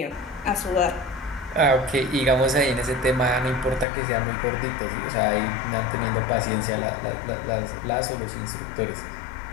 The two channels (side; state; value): right; drops out; at 3.9 s